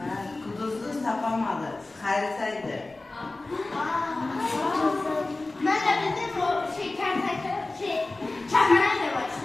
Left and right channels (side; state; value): right; quieter; 3.1 dB